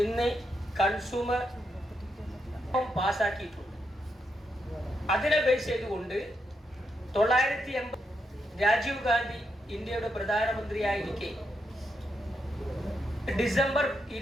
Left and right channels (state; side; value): normal; both; correlation 0.82